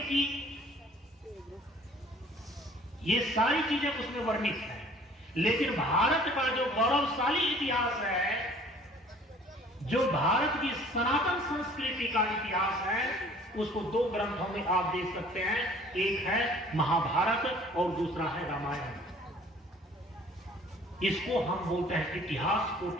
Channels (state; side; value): normal; both; correlation 0.53